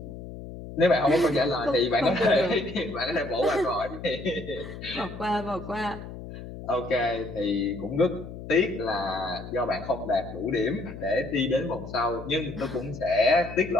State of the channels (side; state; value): left; noise; hum, 11 dB below the sound